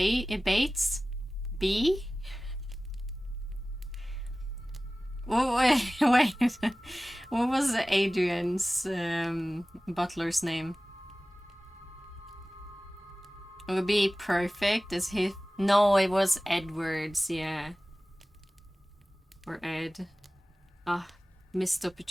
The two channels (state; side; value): normal; both; correlation 0.97